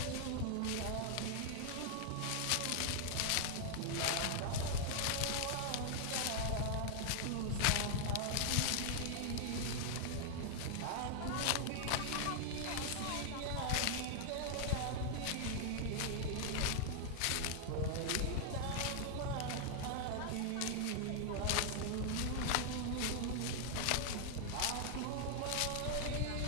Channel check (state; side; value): different; both; correlation 0.00